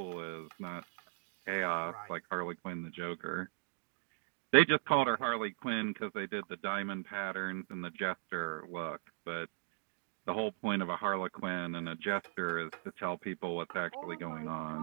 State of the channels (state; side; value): silent; left; digital silence